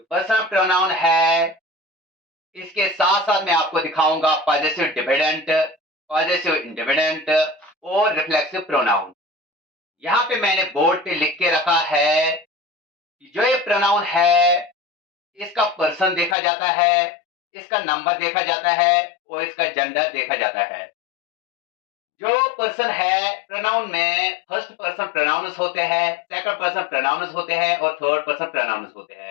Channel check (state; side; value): drops out; right; at 16.4 s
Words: पर्सनल प्रोनाउन है इसके साथ साथ मैं आपको दिखाऊंगा पॉजेसिव डिपेंडेंट, पॉजेसिव इंडिपेंडेंट और रिफ्लेक्सिव प्रोनाउन। यहाँ पे मैंने बोर्ड पे लिख के रखा है कि जो ये प्रोनाउन है इसका पर्सन देखा जाता है, इसका नंबर देखा जाता है और इसका जेंडर देखा जाता है। जो पर्सन है प्रोनाउन में फर्स्ट पर्सन प्रोनाउंस होते हैं, सेकंड पर्सन प्रोनाउंस होते हैं और थर्ड पर्सन प्रोनाउंस होते